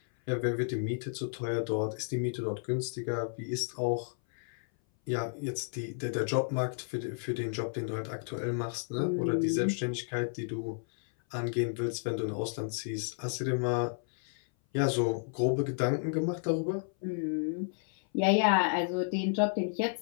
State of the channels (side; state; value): right; silent; 56 dB below the other